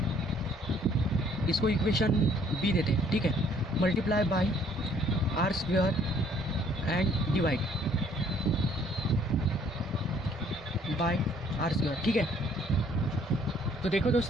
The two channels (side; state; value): both; normal; correlation 0.61